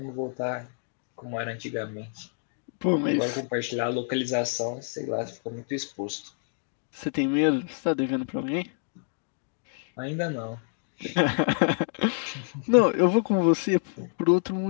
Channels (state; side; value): silent; right; digital silence